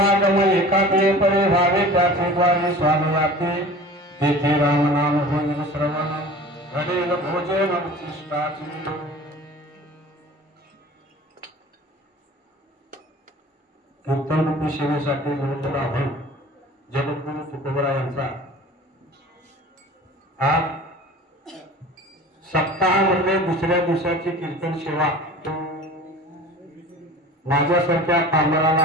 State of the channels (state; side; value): normal; both; correlation 0.41